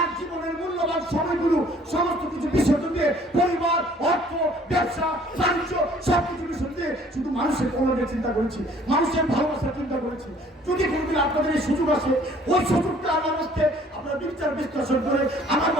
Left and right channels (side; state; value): both; normal; correlation 0.56